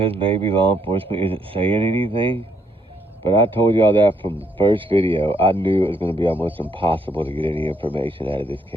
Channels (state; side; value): normal; both; correlation 0.72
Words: maybe law enforcement isn't saying anything. But I told y'all that from the first video. I knew it was going to be almost impossible to get any information out of this